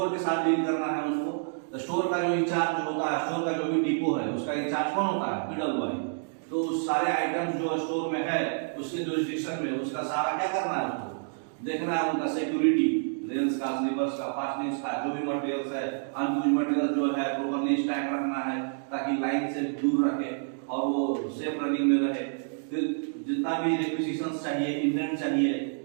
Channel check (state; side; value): silent; left; digital silence